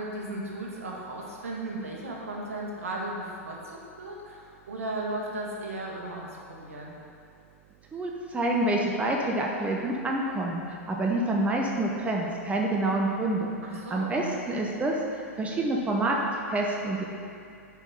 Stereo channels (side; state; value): right; noise; hum, 28 dB below the sound